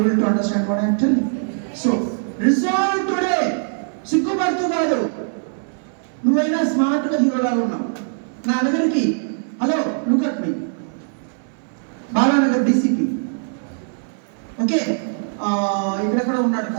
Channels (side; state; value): left; silent; 65 dB below the other